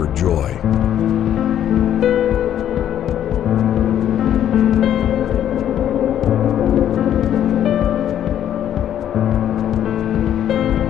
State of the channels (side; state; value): right; quieter; 10.6 dB